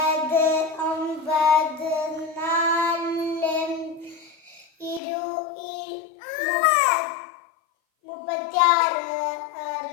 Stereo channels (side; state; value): right; drops out; at 5.0 s